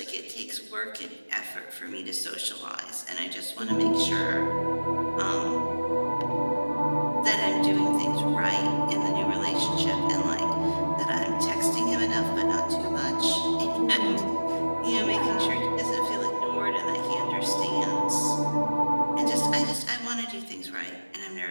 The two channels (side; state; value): both; inverted; correlation -1.00